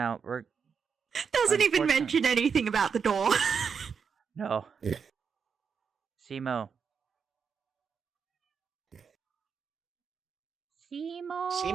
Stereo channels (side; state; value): left; quieter; 6.3 dB